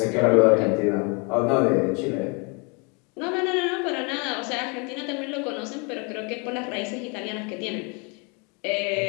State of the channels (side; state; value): right; quieter; 32.6 dB